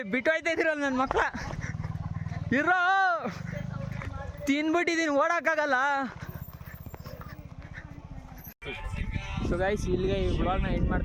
ಬಿಟ್ಟೋಯ್ತಾ ಇದ್ದೀರಲ್ಲ ನನ್ನ ಮಕ್ಕಳ, ಇರೋ ತಿನ್ಬಿಟ್ಟಿದ್ದೀನಿ, ಓಡೋಕ್ಕಾಗಲ್ಲ. ಸೊ ಗೈಸ್, ಇಲ್ಲಿಗೆ ಈ ಬ್ಲಾಗ್ನ ಎಂಡ್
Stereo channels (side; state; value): both; identical; correlation 1.00